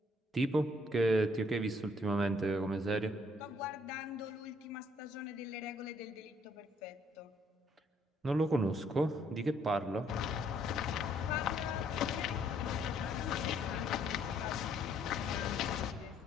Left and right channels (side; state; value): both; normal; correlation 0.66